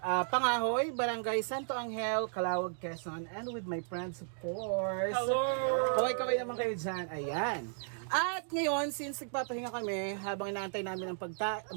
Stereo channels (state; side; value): silent; left; digital silence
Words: Pangahoy, Barangay Santo Angel, Calawag, Quezon, and with my friends of course. Hello! Kaway-kaway naman kayo dyan. Ayan. At ngayon, since nagpapahinga kami, habang inaantay namin ang